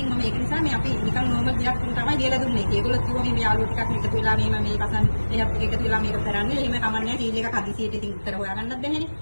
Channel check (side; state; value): both; inverted; correlation -1.00